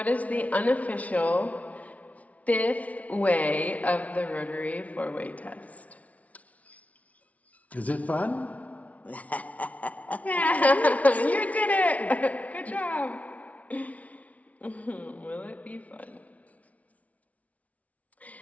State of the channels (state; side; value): late; right; 0.068 ms